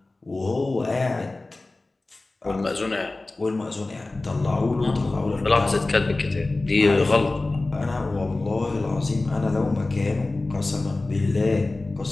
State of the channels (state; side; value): quieter; right; 3.1 dB